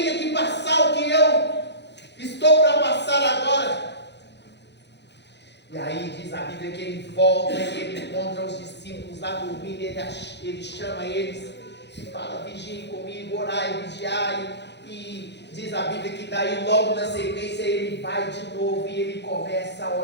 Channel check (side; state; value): right; late; 0.50 ms